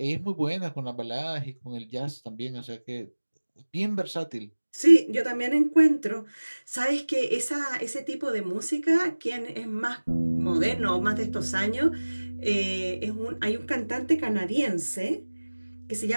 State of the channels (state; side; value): inverted; both; correlation -1.00